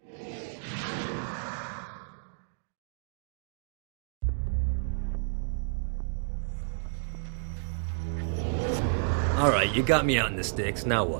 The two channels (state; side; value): silent; left; digital silence